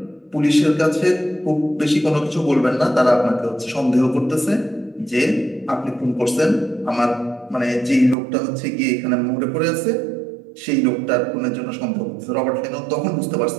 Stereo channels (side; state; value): left; drops out; at 8.2 s